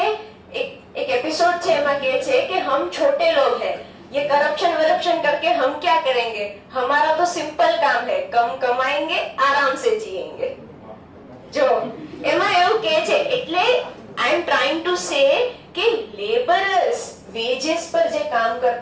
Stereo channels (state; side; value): identical; both; correlation 1.00